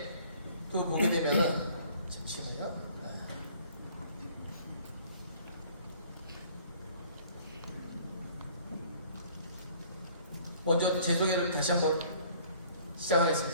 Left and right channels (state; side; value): inverted; both; correlation -0.55